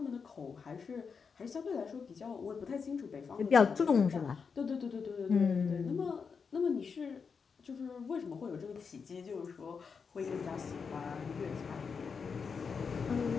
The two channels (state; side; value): quieter; right; 5.7 dB